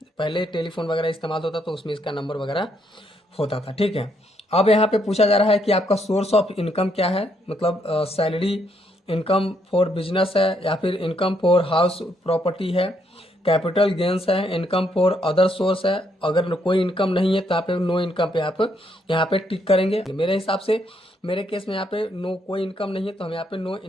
पहले टेलीफोन वगैरह इस्तेमाल होता तो उसमें इसका नंबर वगैरह होता था, ठीक है। अब यहाँ पे पूछा जा रहा है कि आपका सोर्स ऑफ इनकम क्या है, मतलब सैलरी, इनकम फॉर बिजनेस है या फिर इनकम फॉर हाउस प्रॉपर्टी है, कैपिटल गेंस है, इनकम फॉर अदर सोर्स है। अगर कोई इनकम नहीं है तो आप नो इनकम पे आप यहाँ पे टिक करेंगे। मेरे हिसाब से मेरे केस में यहाँ पे नो कोई इनकम नहीं है, तो हम यहाँ पे नो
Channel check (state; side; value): normal; both; correlation 0.73